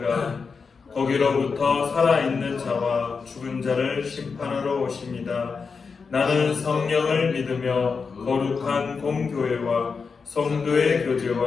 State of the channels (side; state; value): right; quieter; 5.2 dB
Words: 거기로부터 살아있는 자와 죽은 자를 심판하러 오십니다. 나는 성령을 믿으며 거룩한 공교회와 성도의